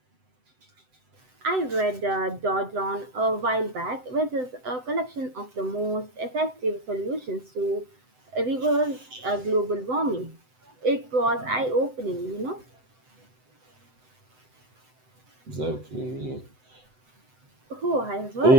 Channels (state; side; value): late; left; 7.9 ms